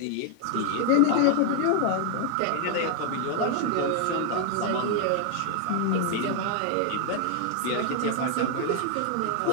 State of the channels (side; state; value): both; different; correlation 0.00